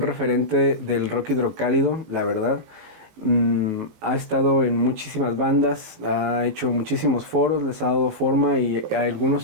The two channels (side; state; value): left; late; 19 ms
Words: del rock hidrocálido, la verdad. Ha estado en muchísimas bandas, ha hecho muchísimos foros, les ha dado forma y